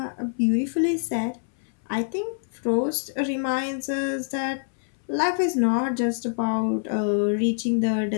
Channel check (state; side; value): silent; right; 61 dB below the other